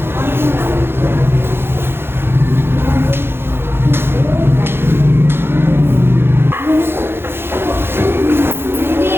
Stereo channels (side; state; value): left; late; 0.11 ms